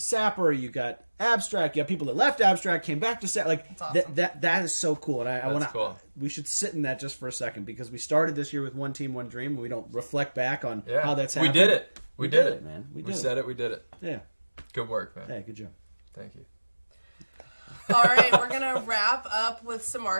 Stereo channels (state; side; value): inverted; both; correlation -1.00